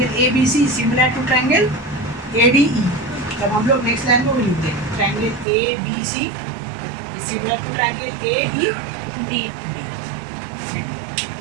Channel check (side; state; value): left; drops out; at 5.5 s